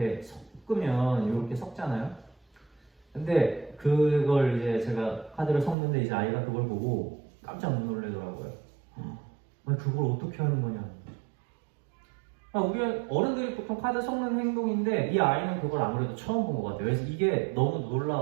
섞으면 이렇게 섞잖아요. 근데 그걸 이제 제가 카드를 섞는데 이제 아이가 그걸 보고 깜짝 놀라더라고요. 그걸 어떻게 하는 거냐. 우리 어른들이 보통 카드 섞는 행동인데 이 아이는 그걸 아무래도 처음 본 것 같아요. 그래서 이게 너무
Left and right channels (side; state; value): left; drops out; at 5.8 s